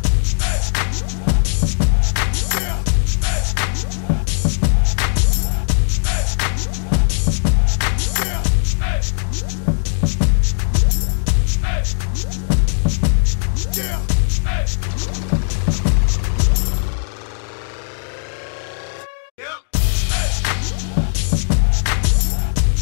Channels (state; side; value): silent; right; digital silence